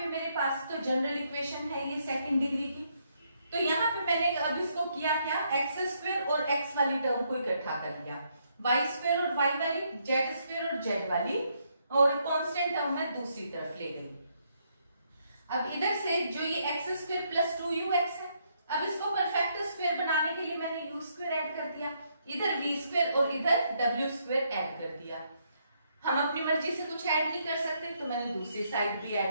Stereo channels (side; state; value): both; inverted; correlation -0.74